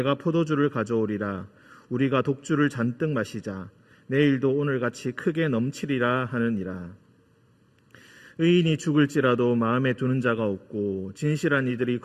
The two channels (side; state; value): both; identical; correlation 1.00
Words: 포도주를 가져오리라. 우리가 독주를 잔뜩 마시자. 내일도 오늘같이 크게 넘치리라 하느니라. 의인이 죽을지라도 마음에 두는 자가 없고 진실한 이들이